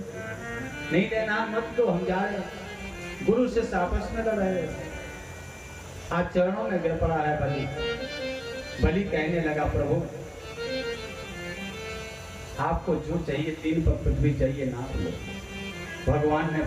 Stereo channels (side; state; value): both; identical; correlation 1.00